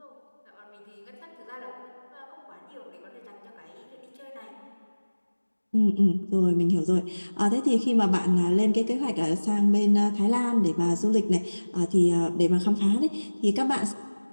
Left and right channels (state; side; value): inverted; both; correlation -1.00